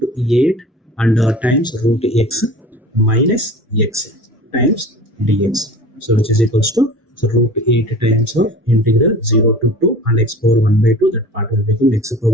8 and times root x minus x times dx. So which is equals to, so root 8 times of integral 0 to 2 and x power 1 by 2, that part will become x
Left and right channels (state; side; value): normal; both; correlation 0.40